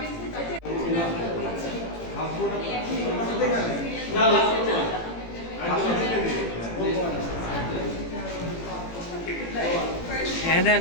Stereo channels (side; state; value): right; late; 18 ms